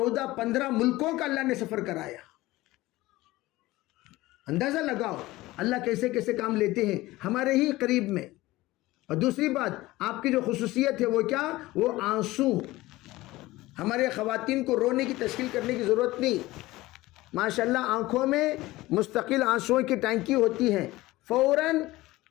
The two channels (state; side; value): quieter; right; 18.5 dB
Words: ملکوں کا اللہ نے سفر کرایا. اندازہ لگاؤ اللہ کیسے کیسے کام لیتے ہیں ہمارے ہی قریب میں. اور دوسری بات، آپ کی جو خصوصیت ہے وہ کیا؟ وہ آنسو. ہمارے خواتین کو رونے کی تشکیل کرنے کی ضرورت نہیں. ماشاءاللہ آنکھوں میں مستقل آنسوؤں کی ٹینکی ہوتی ہے، فوراً